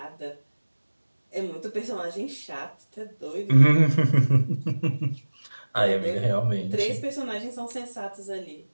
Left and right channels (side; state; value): both; inverted; correlation -1.00